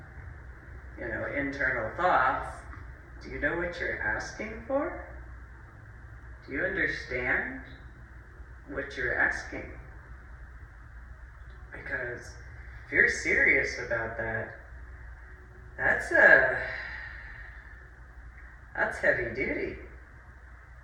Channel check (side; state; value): both; identical; correlation 1.00